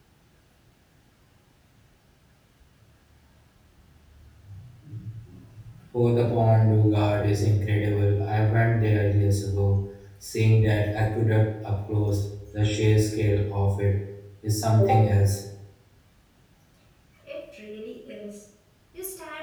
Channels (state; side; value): identical; both; correlation 1.00